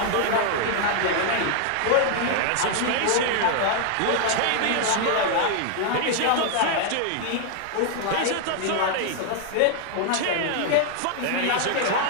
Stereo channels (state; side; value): different; both; correlation 0.00